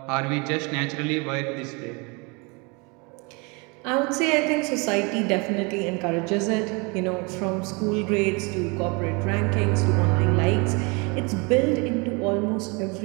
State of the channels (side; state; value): left; quieter; 29.7 dB